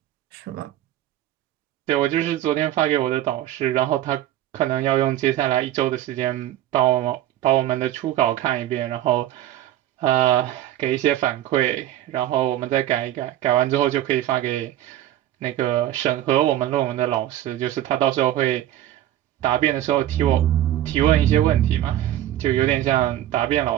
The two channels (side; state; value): left; quieter; 13.1 dB